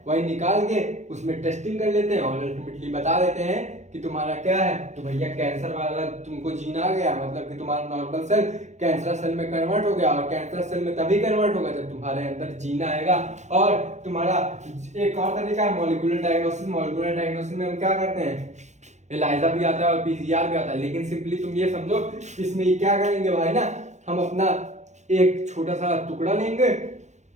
वही निकाल के उसमें टेस्टिंग कर लेते हैं और अल्टीमेटली बता देते हैं कि तुम्हारा क्या है, तो भैया कैंसर वाला तुमको जीन आ गया। मतलब कि तुम्हारा नॉर्मल सेल कैंसर सेल में कन्वर्ट हो गया, और कैंसर सेल में तभी कन्वर्ट होगा जब तुम्हारे अंदर जीन आएगा। और तुम्हारा एक और तरीका है मॉलिक्यूलर डायग्नोसिस। मॉलिक्यूलर डायग्नोसिस में हम क्या करते हैं, एलाइजा भी आता है और PCR भी आता है। लेकिन सिंपली तुम ये समझो इसमें क्या करेंगे भाई ना, हम अपना एक छोटा सा टुकड़ा लेंगे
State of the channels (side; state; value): left; late; 0.34 ms